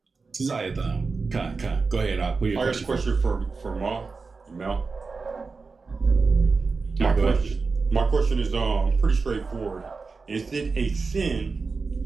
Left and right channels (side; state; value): left; quieter; 4.4 dB